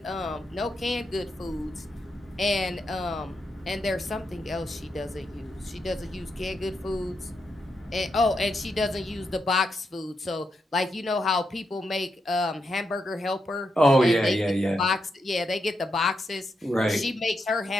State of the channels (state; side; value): normal; both; correlation 0.84